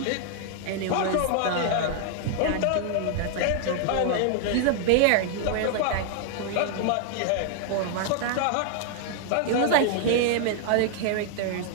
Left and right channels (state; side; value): different; both; correlation 0.00